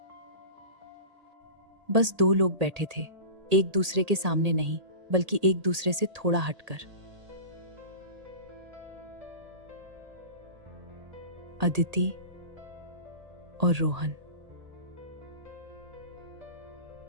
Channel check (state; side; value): late; left; 1.8 ms